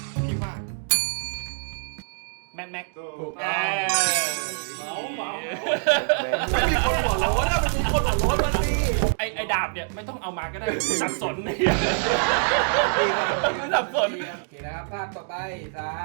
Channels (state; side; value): silent; left; digital silence